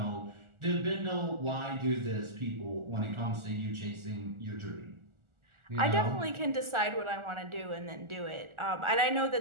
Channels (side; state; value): left; late; 1.4 ms